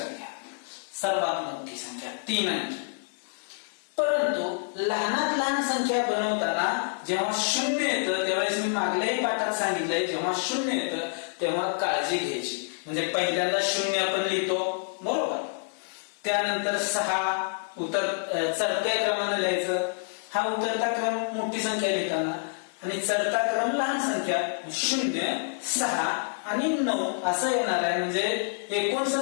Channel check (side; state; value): right; silent; 60 dB below the other